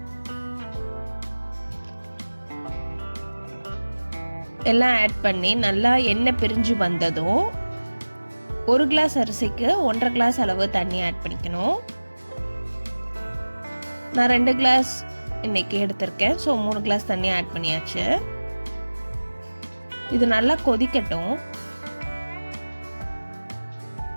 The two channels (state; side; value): inverted; both; correlation -1.00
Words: எல்லாம் ஆட் பண்ணி நல்லா எண்ணெய் பிரிஞ்சு வந்ததும் 1 கிளாஸ் அரிசிக்கு 1.5 கிளாஸ் அளவு தண்ணி ஆட் பண்ணிக்கணும். நான் 2 கிளாஸ் இன்னைக்கு எடுத்திருக்கேன், ஸோ 3 கிளாஸ் தண்ணி ஆட் பண்ணியாச்சு. இது நல்லா கொதிக்கட்டும்.